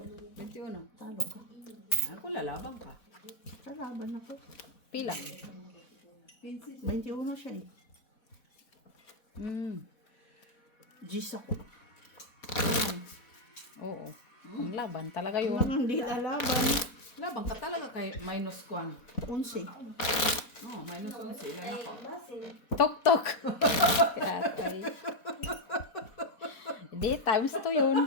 21. Talo ka. Ako lalabang ka. Kalaban ako. Pila. 21 siya eh. Gis ako. Oo. Ang laban talaga yun. Walang hindi lalaban. Labang ka talaga kay minus kwan. 11. Oh, minus 11. Ilan ako? Tok-tok. Atay. Hindi, times 2 yun.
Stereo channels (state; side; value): late; right; 4.1 ms